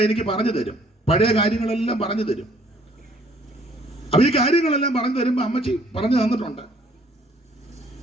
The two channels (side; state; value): both; normal; correlation 0.61